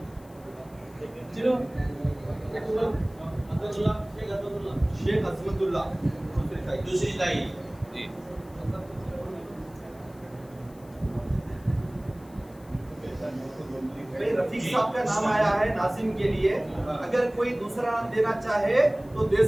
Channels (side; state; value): left; noise; hiss, 27 dB below the sound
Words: شیخ عظمت اللہ دوسری تائید. جی بھائی رفیق صاحب کا نام آیا ہے ناظم کے لیے. اگر کوئی دوسرا نام دینا چاہے تو دے